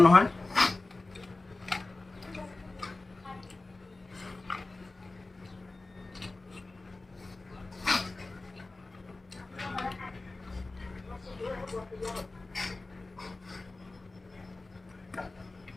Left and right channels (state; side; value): quieter; right; 3.2 dB